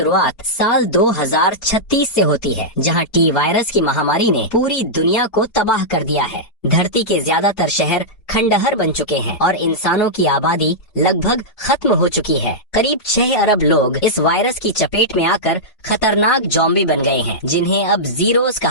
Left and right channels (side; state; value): right; late; 4.8 ms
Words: साल 2036 से होती है, जहां टी वायरस की महामारी ने पूरी दुनिया को तबाह कर दिया है। धरती के ज्यादातर शहर खंडहर बन चुके हैं और इंसानों की आबादी लगभग खत्म हो चुकी है। करीब 6 अरब लोग इस वायरस की चपेट में आकर खतरनाक ज़ॉम्बी बन गए हैं, जिन्हें अब जीरोस